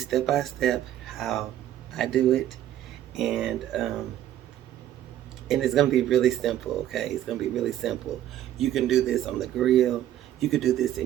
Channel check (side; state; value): left; quieter; 12.1 dB